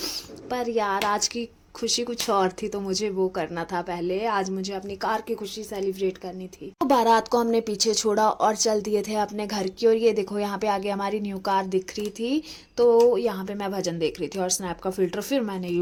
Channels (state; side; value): identical; both; correlation 1.00